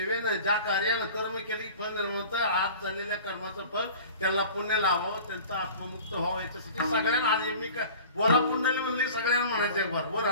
ज्या कार्यानं कर्म केली फळ निर्माण आज झालेल्या कर्माचं फळ त्यांना पुण्य लावावं त्यांचा आत्ममुक्त व्हावं याच्यासाठी सगळ्यांना आज मी काय बोला पुंडली म्हणली सगळ्यांना म्हणायचं एक बार वर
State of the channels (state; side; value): inverted; both; correlation -0.42